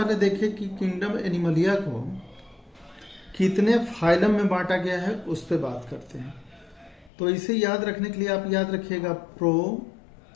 देखिए कि किंगडम एनिमलिया को कितने फाइलम में बांटा गया है, उस पर बात करते हैं। तो इसे याद रखने के लिए आप याद रखिएगा प्रो,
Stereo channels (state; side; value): drops out; right; at 7.1 s